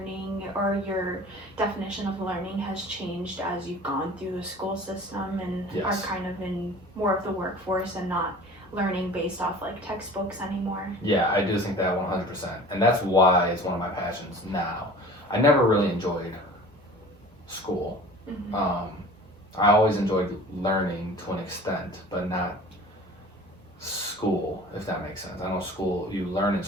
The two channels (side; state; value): both; normal; correlation 0.43